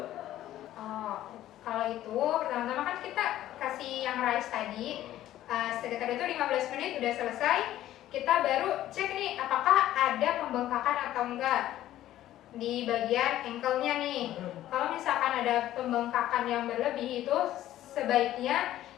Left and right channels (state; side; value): quieter; right; 13.4 dB